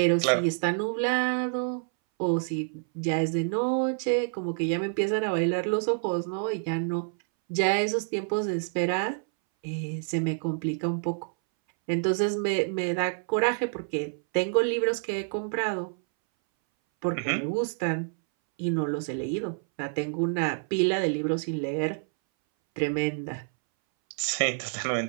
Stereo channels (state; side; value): silent; left; 59 dB below the other